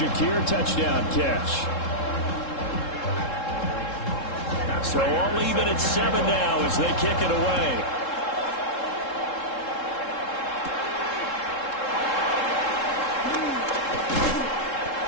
touchdown catch. So all even at 7 now as they kick it away.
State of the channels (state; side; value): late; right; 3.7 ms